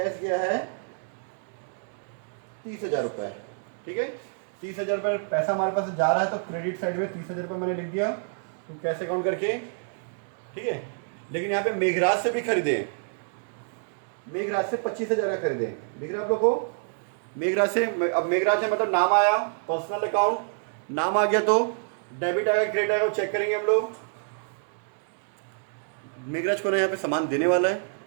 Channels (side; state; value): left; silent; digital silence